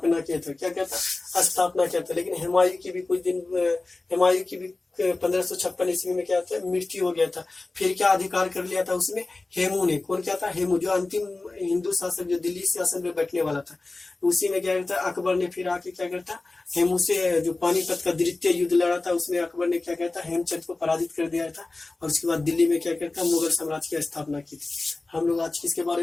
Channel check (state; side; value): quieter; right; 3.3 dB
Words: किया था। क्या कहता? स्थापना किया था। लेकिन हुमायूं की भी 1556 ईस्वी में क्या था? मृत्यु हो गया था। फिर क्या अधिकार कर लिया था उसमें? हेमू ने। कौन क्या था? हेमू, जो अंतिम हिंदू शासक जो दिल्ली शासन में बैठने वाला था। उसी में क्या करता? अकबर ने फिर आके क्या करता? हेमू से जो पानीपत का द्वितीय युद्ध लड़ा था उसमें अकबर ने क्या कहता? हेमचंद को पराजित कर दिया था। और उसके बाद दिल्ली में क्या करता? मुगल साम्राज्य की स्थापना की थी। हम लोग आज किसके